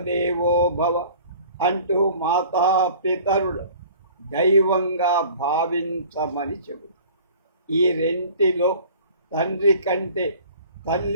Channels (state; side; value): inverted; both; correlation -0.47